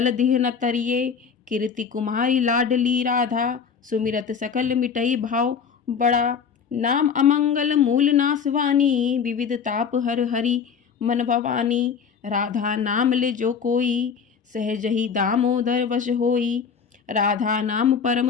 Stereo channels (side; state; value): right; quieter; 6.6 dB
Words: दिह न तरिए। कीर्ति कुमारी लाडली राधा, सुमिरत सकल मिटई भाव बड़ा। नाम अमंगल मूल नासवानी, विविध ताप हर हरि मन भवानी। राधा नाम ले जो कोई, सहज ही दामोदर वश होई। राधा नाम